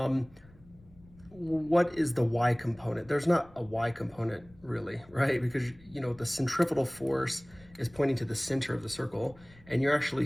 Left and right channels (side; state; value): left; noise; rumble, 25 dB below the sound